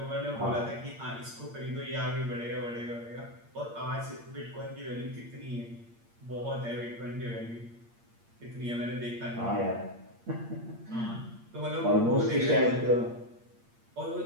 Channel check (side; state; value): left; late; 8.7 ms